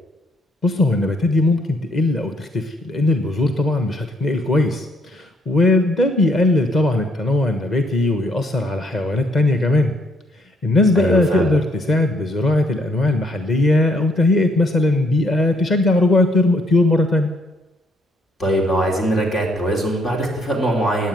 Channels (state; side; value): normal; both; correlation 0.69